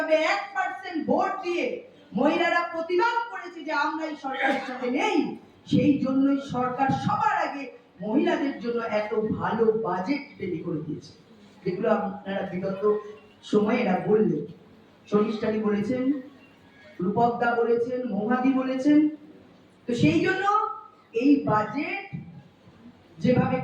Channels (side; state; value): both; identical; correlation 1.00